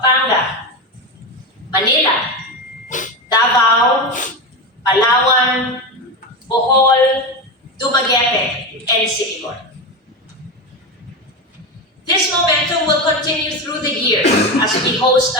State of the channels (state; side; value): normal; both; correlation 0.17